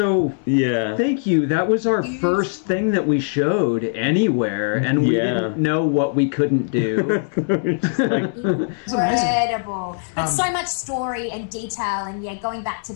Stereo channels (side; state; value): right; silent; digital silence